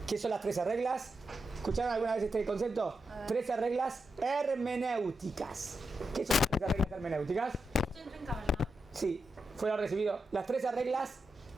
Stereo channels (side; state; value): both; normal; correlation 0.88